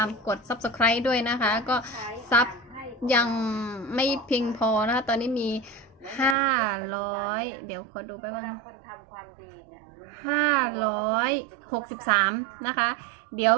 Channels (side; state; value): left; drops out; at 6.4 s